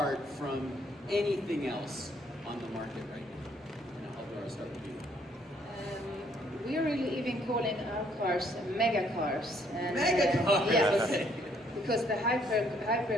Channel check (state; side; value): normal; both; correlation 0.66